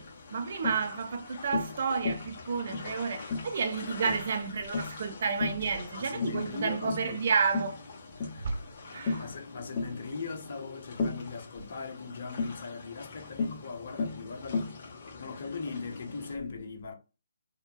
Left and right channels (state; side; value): inverted; both; correlation -0.74